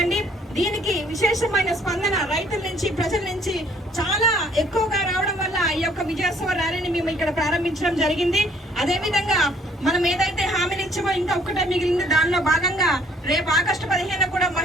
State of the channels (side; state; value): both; normal; correlation 0.61